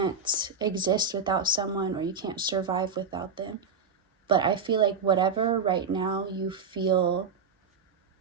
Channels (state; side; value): quieter; left; 5.2 dB